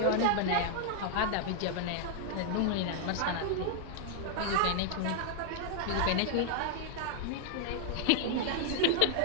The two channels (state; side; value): different; both; correlation 0.00